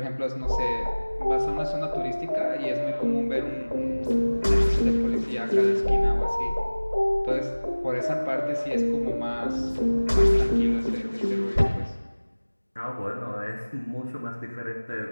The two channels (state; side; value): inverted; both; correlation -1.00